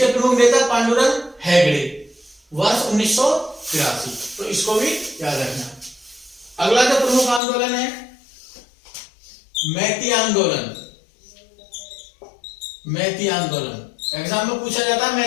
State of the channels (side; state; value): right; drops out; at 7.4 s